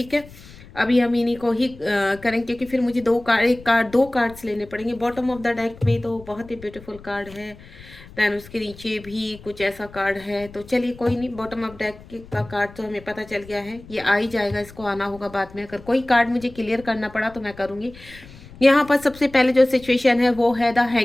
है। अभी हम इन्हीं को ही करेंगे क्योंकि फिर मुझे दो कार्ड्स लेने पड़ेंगे। बॉटम ऑफ द डेक में तो बहुत ही ब्यूटीफुल कार्ड है, दैन उसके नीचे भी कुछ ऐसा कार्ड है। तो चलिए कोई नहीं, बॉटम ऑफ डेक का कार्ड तो हमें पता चल गया है, ये आ ही जाएगा, इसको आना होगा बाद में। अगर कोई कार्ड मुझे क्लियर करना पड़ा तो मैं करूँगी। यहाँ पर सबसे पहले जो सिचुएशन है वो है द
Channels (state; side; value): noise; left; rumble, 20 dB below the sound